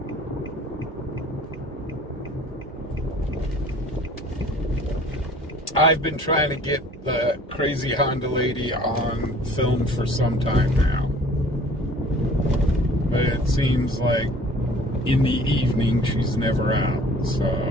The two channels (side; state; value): both; normal; correlation 0.50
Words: I've been trying to get the crazy Honda lady on film for some time now. But it seems like in the evening she's never out, so...